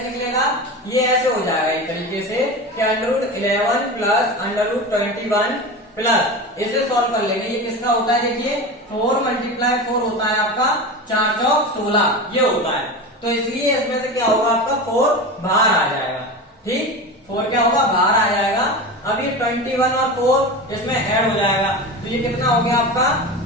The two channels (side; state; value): both; normal; correlation 0.27